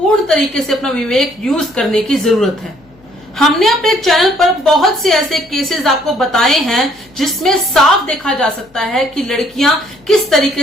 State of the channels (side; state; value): left; noise; hum, 30 dB below the sound